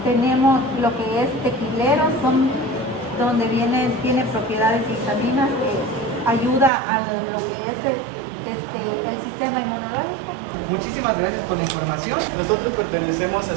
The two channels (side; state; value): left; drops out; at 6.7 s